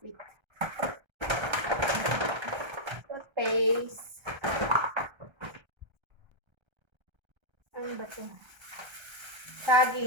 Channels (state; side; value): late; left; 1.3 ms